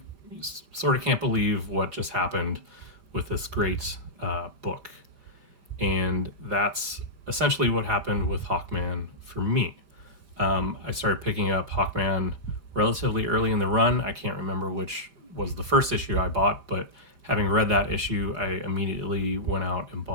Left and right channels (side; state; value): left; late; 5.0 ms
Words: sort of can't believe what just happened with this great book. And that's essentially what happened with Hawkman for me. I started picking up Hawkman relatively early in the run. I can't remember which was the first issue I bought, but having read that issue, I immediately went out and